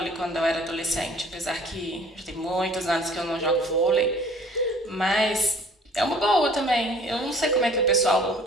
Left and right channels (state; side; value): normal; both; correlation 0.52